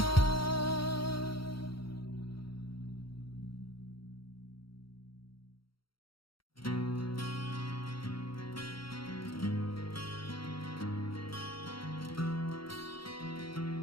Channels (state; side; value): late; right; 0.74 ms